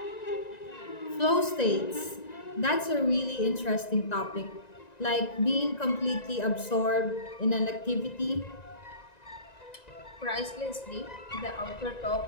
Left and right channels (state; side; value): late; right; 1.9 ms